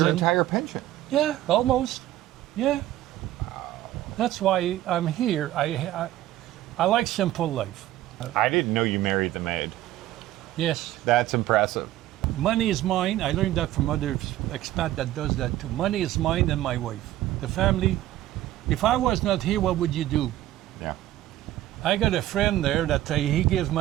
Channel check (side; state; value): left; quieter; 14.4 dB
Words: your entire pension. yeah, almost. Yeah. That's why I'm here. I like simple life. I didn't know you married the maid. Yes. That's impressive. Money is mine. I learned that from other expat that does that too. Money is mine and my wife. The family. If I was not here, what would you do? Yeah. I got a friend there that he gives